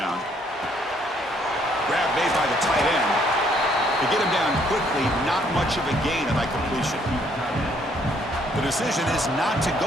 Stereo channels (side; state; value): both; normal; correlation 0.67